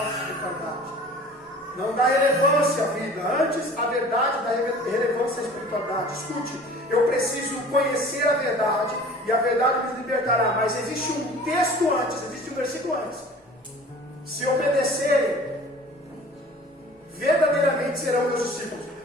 espiritualidade. Não dá relevância à vida, antes a verdade dá relevância à espiritualidade. Escute, eu preciso conhecer a verdade e a verdade me libertará. Mas existe um texto antes, existe um versículo antes. Se obedecerem, verdadeiramente serão meus discípulos.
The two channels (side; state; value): both; normal; correlation 0.44